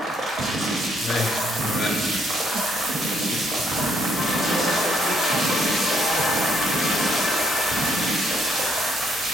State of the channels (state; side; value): normal; both; correlation 0.70